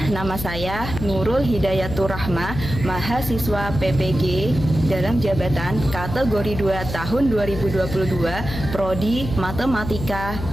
nama saya Nurul Hidayatur Rahma, mahasiswa PPG dalam jabatan kategori 2 tahun 2022, Prodi Matematika,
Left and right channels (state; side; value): noise; left; hum, 7 dB below the sound